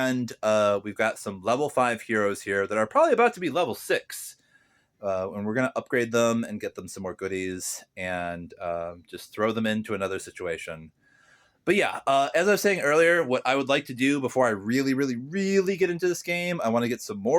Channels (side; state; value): both; identical; correlation 1.00